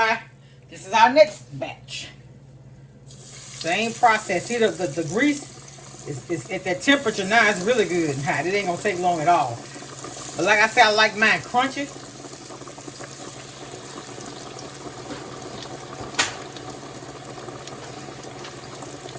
This is our next batch. Same process. See, the grease is at that temperature now. It's really good and hot. It ain't gonna take long at all. But like I said, I like mine crunchy.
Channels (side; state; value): both; identical; correlation 1.00